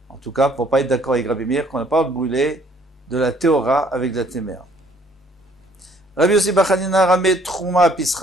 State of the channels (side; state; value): both; normal; correlation 0.61